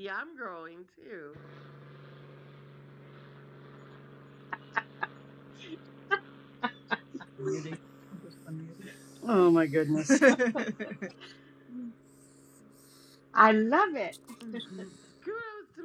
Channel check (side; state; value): both; identical; correlation 1.00